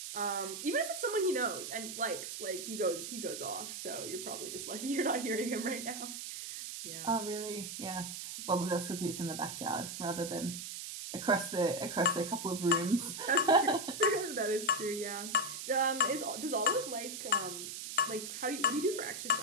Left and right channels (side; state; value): right; noise; hiss, 7 dB below the sound